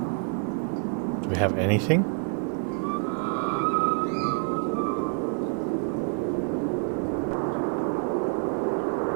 Do we have anything?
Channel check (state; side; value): quieter; left; 38.6 dB